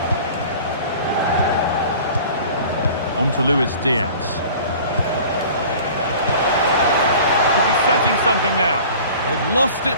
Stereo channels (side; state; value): both; inverted; correlation -0.44